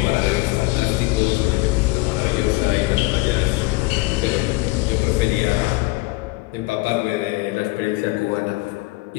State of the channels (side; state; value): right; quieter; 21.9 dB